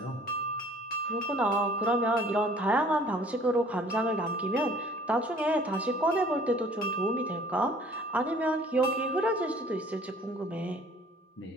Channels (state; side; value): normal; both; correlation 0.53